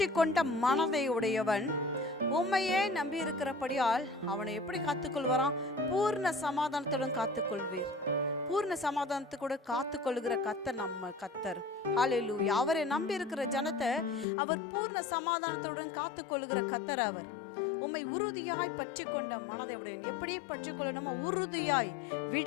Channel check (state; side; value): drops out; right; at 14.2 s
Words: கொண்ட மனதை உடையவன் உண்மையே நம்பி இருக்கிறபடியால் அவனை எப்படி காத்துக்கொள்வாராம்? பூர்ண சமாதானத்துடன் காத்துக்கொள்வீர். பூர்ண சமாதானத்தை கூட காத்துக்கொள்ளுகிற கர்த்தர் நம்ம கர்த்தர். ஹல்லேலூயா. அவரை நம்பி இருக்கிற ஜனத்தை அவர் பூர்ண சமாதானத்துடன் காத்துக்கொள்ளுகிற கர்த்தர். அவர் உம்மை உறுதியாய் பற்றி கொண்ட மனதை உடையவன். எப்படி பற்றி கொள்ளணுமோ உறுதியாய்,